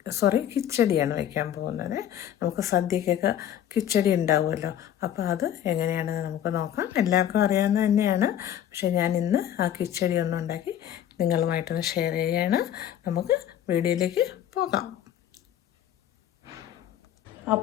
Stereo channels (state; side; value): quieter; right; 10.7 dB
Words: കിച്ചടിയാണ് വയ്ക്കാൻ പോകുന്നത്. നമുക്ക് സദ്യക്കൊക്കെ കിച്ചടി ഉണ്ടാവുമല്ലോ, അപ്പോൾ അത് എങ്ങനെയാണെന്ന് നമുക്ക് നോക്കാം. എല്ലാവർക്കും അറിയാവുന്ന തന്നെയാണ്, പക്ഷേ ഞാൻ ഇന്ന് ആ കിച്ചടി ഒന്നുണ്ടാക്കി നിങ്ങളുമായിട്ടൊന്ന് ഷെയർ ചെയ്യുകയാണ്. നമുക്ക് വീഡിയോയിലേക്ക് പോകാം.